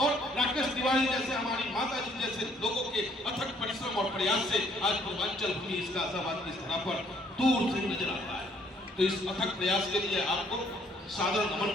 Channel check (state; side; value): normal; both; correlation 0.64